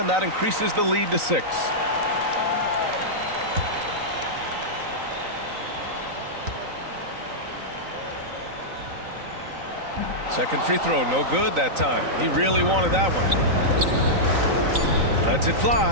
that increases the lead to 6. Second free throw, no good that time. He really wanted that one. Lets it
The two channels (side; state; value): left; late; 3.9 ms